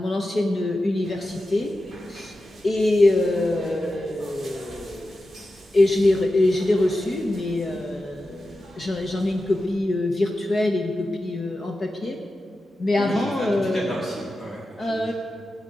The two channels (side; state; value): both; normal; correlation 0.92